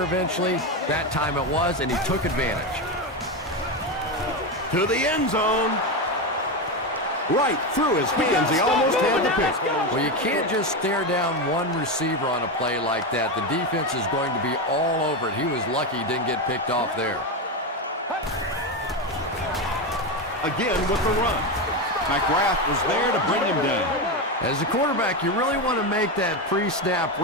eventually. That time it was, and he took advantage. To the end zone. Right through his hands. He almost had the pick. Well, you can't just stare down one receiver on a play like that. The defense is going to be all over it. He was lucky he didn't get picked off there. Again with the run. McGrath was there to bring him down. As a quarterback, you really want to make that pre-snap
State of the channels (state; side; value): normal; both; correlation 0.13